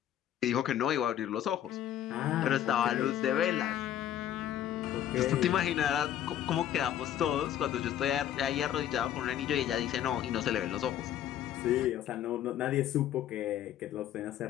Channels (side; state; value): right; quieter; 11.1 dB